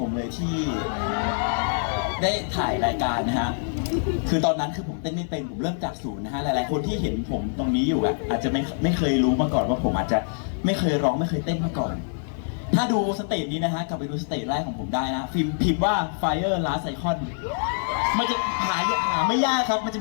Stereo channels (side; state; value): right; silent; digital silence